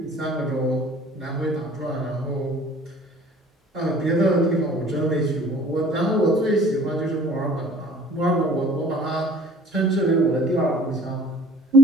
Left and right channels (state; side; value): normal; both; correlation 0.51